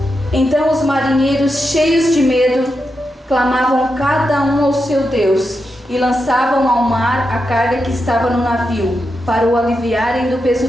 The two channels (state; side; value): normal; both; correlation 0.87